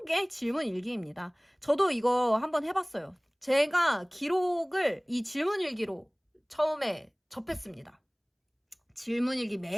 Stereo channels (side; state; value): both; identical; correlation 1.00